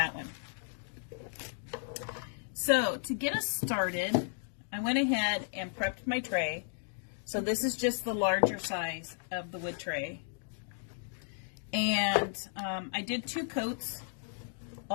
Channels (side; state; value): right; silent; digital silence